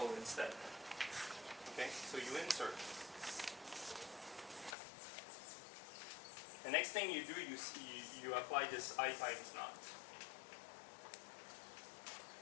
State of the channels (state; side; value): drops out; right; at 4.8 s